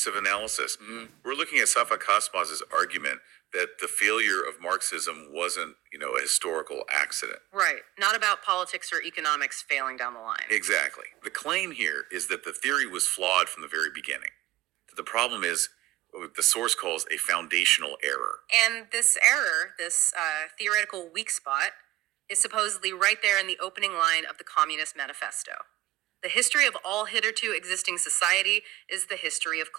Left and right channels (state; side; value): quieter; left; 15.9 dB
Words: of analysis. We're looking at Safak Hasmaz's argument that the failure of Marxism wasn't, a historical accident. Right. Not about politics or economics failing down the line. Exactly. The claim here is that the theory was flawed from the very beginning. The problem is what the source calls a foundational error. And this error, this theoretical weak spot, is supposedly right there in the opening line of the Communist Manifesto. The history of all hitherto existing society is the history of